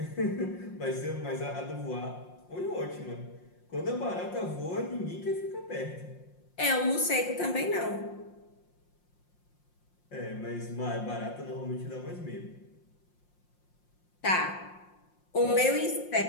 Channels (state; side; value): late; right; 5.6 ms